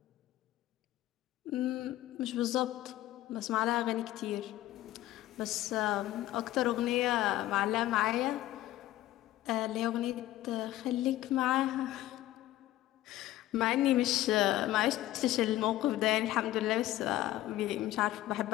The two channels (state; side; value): quieter; right; 15.0 dB